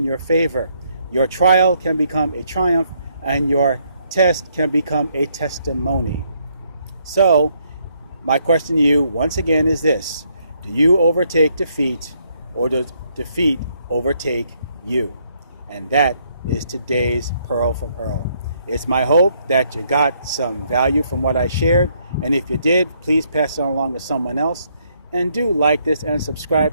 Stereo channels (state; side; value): inverted; both; correlation -0.72